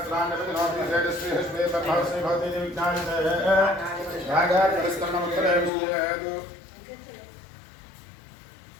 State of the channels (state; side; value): drops out; right; at 5.7 s